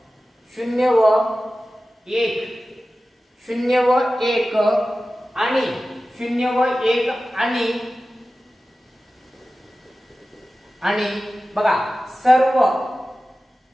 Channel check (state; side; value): normal; both; correlation 0.95